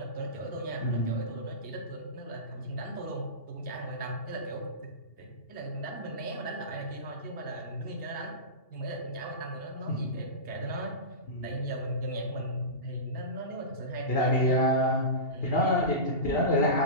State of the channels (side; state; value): right; late; 2.8 ms